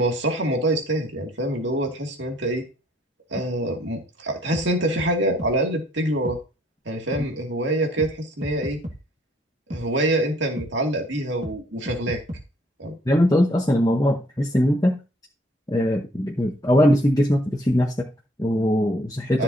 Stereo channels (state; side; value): normal; both; correlation 0.62